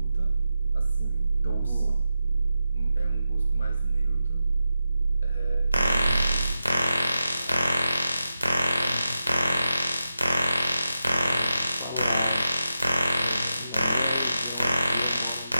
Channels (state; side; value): inverted; both; correlation -0.90